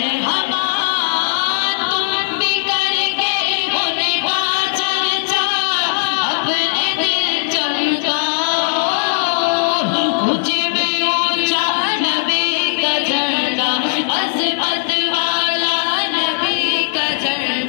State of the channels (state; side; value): silent; right; digital silence